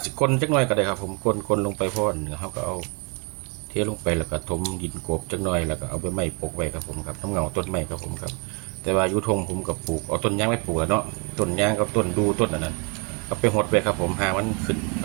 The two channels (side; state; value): left; quieter; 29.5 dB